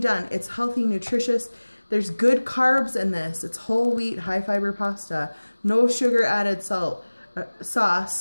It's healthy, nutritious. There's good carbs in this. It's whole wheat, high fiber pasta, no sugar added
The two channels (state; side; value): inverted; both; correlation -1.00